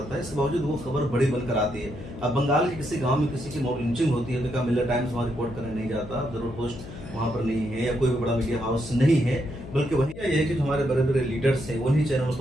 है। इसके बावजूद वो खबर बड़ी बनकर आती है। अब बंगाल के किसी गांव में किसी की मॉब लिंचिंग होती है तो क्या मिलर टाइम्स वहाँ रिपोर्ट करने नहीं जाता, जरूर पोस्ट वहाँ पर नहीं है या कोई भी बड़ा मीडिया हाउस नहीं है, बल्कि वही ये है कि जो हमारे बड़े बड़े लीडर्स हैं उन्हीं चैनलों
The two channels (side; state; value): left; noise; hum, 13 dB below the sound